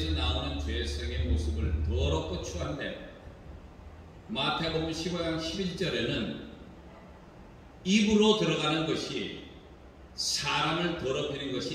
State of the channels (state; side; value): identical; both; correlation 1.00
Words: 나오는 죄성의 모습을 더럽고 추한데 마태복음 15장 11절에는 입으로 들어가는 것이 사람을 더럽히는